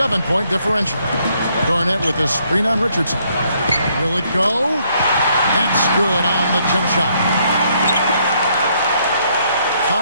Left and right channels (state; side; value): inverted; both; correlation -0.70